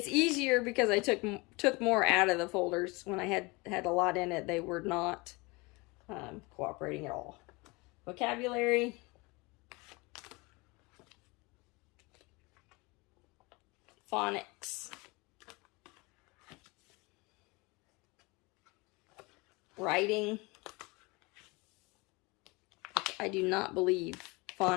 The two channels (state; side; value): quieter; right; 25.6 dB